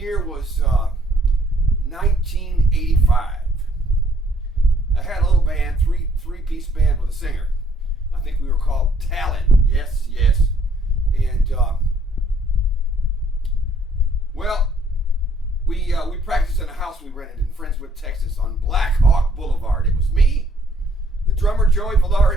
was 1985. I had a little band, three-piece band with a singer. I think we were called Talent. Yes. And we practiced in a house we rented in Friendswood, Texas, on Black Hawk Boulevard. It was me, the drummer Joey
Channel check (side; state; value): both; normal; correlation 0.64